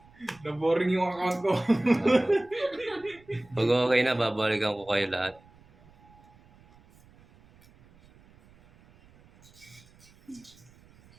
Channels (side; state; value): right; noise; rumble, 27 dB below the sound